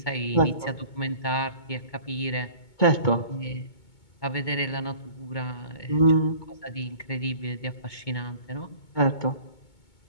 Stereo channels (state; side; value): late; right; 2.2 ms